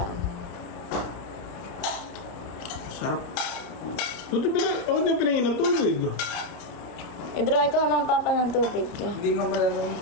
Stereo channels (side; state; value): right; late; 31 ms